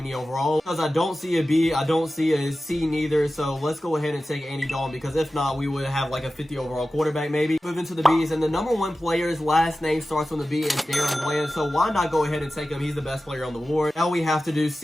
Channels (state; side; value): normal; both; correlation 0.95